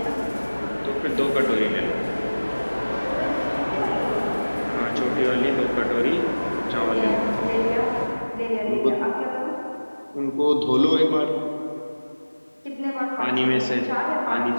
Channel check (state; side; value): inverted; both; correlation -1.00